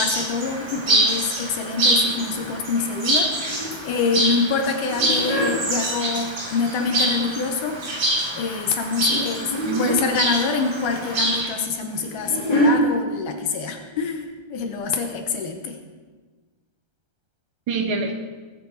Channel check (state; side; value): late; left; 1.3 ms